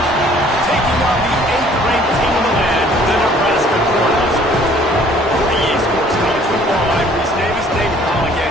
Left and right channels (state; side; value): normal; both; correlation 0.56